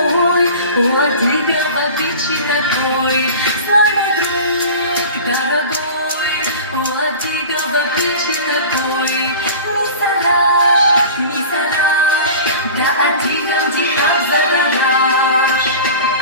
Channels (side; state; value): both; inverted; correlation -0.36